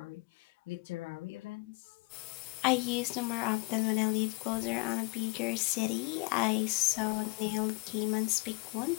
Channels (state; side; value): quieter; right; 26.9 dB